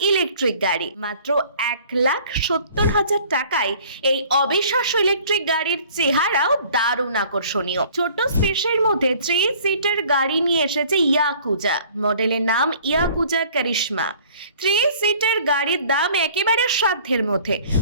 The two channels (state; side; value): inverted; both; correlation -0.52